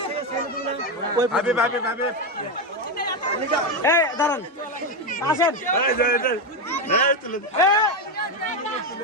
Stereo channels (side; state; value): both; normal; correlation 0.10